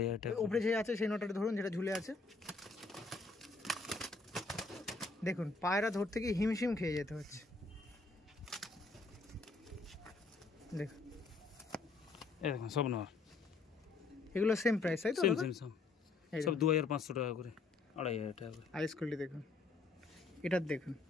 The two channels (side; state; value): right; quieter; 3.9 dB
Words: টাকা। উপরে যে আছে সেই নটাটা ধরুন, যেটা ঝুলে আছে। দেখুন পায়রা ধরতে গিয়ে হিমশিম খেয়ে যেতে হচ্ছে। দেখুন এই দেখুন সব নর, এগুলো সেম প্রাইস, তাই তো? সব 2,500 টাকা করে, 2,500 টাকা করে। আইস কোয়ালিটি দেখুন, এটার দেখুন